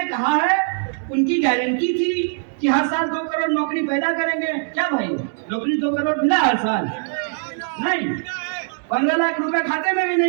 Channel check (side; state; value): left; silent; 65 dB below the other